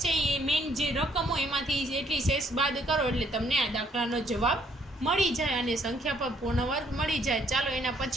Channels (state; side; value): normal; both; correlation 0.67